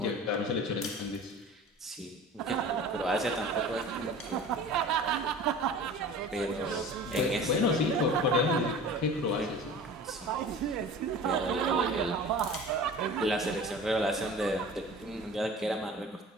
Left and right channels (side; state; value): both; normal; correlation 0.40